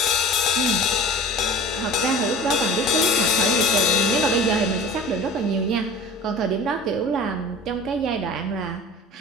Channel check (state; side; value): normal; both; correlation 0.40